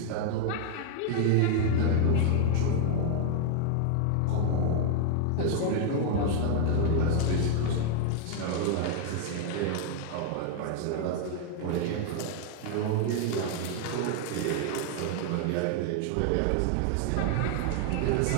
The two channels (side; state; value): both; different; correlation 0.00